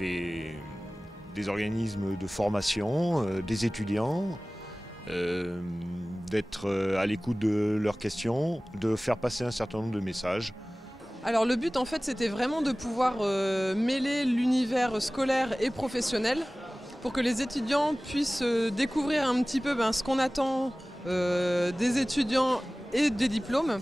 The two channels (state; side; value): normal; both; correlation 0.98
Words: organismes de formation, des étudiants, d'être à l'écoute de leurs questions, de faire passer un certain nombre de messages. Alors le but en fait c'était vraiment de pouvoir mêler l'univers scolaire et professionnel pour que les étudiants puissent découvrir un petit peu ce qu'on attend des étudiants et des diplômes,